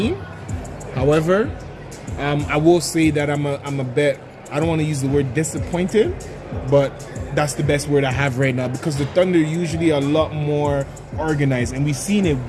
However, I will say that I'm a bit, I don't want to use the word disappointed, but that's the best word I have right now, because the Thunder usually are a lot more organized, and we've seen it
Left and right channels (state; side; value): identical; both; correlation 1.00